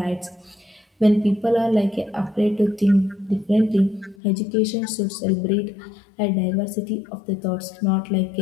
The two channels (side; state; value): right; drops out; at 4.2 s